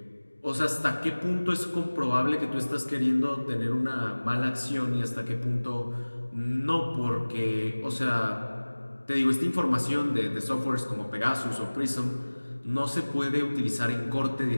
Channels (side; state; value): both; inverted; correlation -1.00